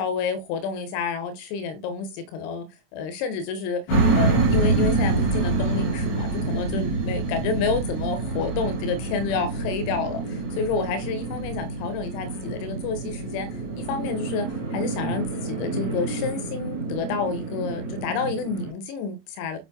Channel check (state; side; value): late; right; 26 ms